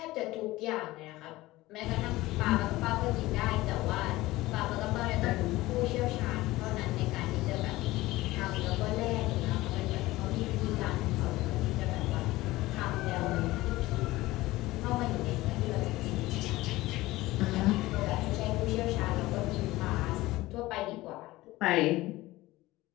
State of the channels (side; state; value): right; quieter; 18.4 dB